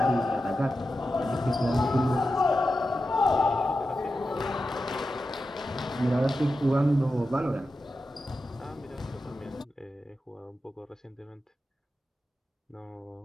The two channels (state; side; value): normal; both; correlation 0.91